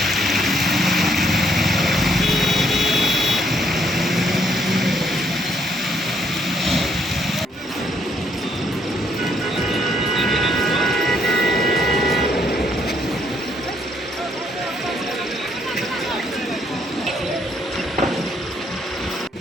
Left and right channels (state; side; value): normal; both; correlation 0.70